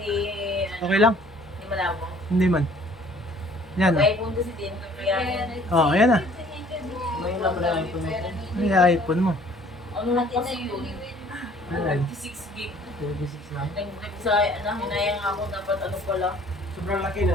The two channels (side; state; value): both; normal; correlation 0.55